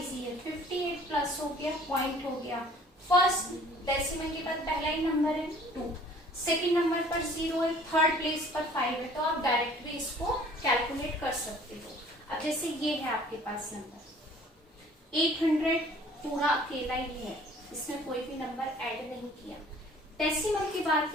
है, 58 प्लस हो गया, पॉइंट हो गया, फर्स्ट डेसिमल के बाद पहला ही नंबर है 2, सेकंड नंबर पर 0 है, थर्ड प्लेस पर 5 है, तो आप डायरेक्ट भी इसको कैलकुलेट कर सकते हो। अब जैसे ये है आपके पास नंबर 800 पूरा अकेला ही है, इसमें कोई भी नंबर ऐड नहीं किया, डेसिमल के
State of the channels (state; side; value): normal; both; correlation 0.53